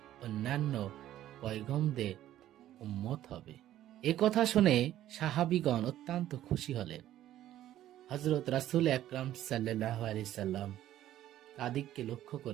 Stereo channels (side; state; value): left; quieter; 12.9 dB